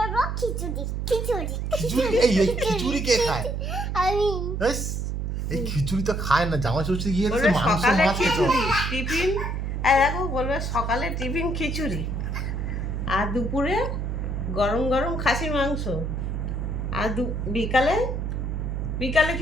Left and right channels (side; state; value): right; noise; hum, 2 dB below the sound